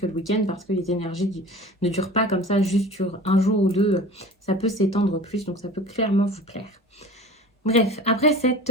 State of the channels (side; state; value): both; normal; correlation 0.39